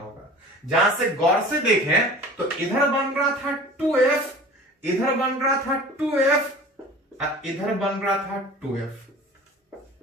जहां से गौर से देखें तो इधर बन रहा था 2f, इधर बन रहा था 2f, इधर बन रहा था 2f।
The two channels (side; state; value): both; normal; correlation 0.41